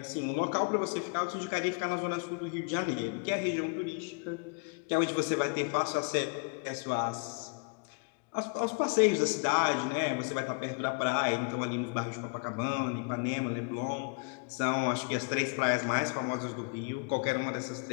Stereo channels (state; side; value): quieter; right; 35.2 dB